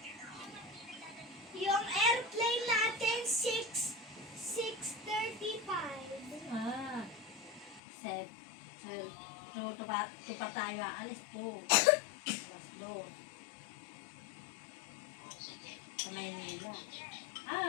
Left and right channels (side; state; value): right; drops out; at 7.8 s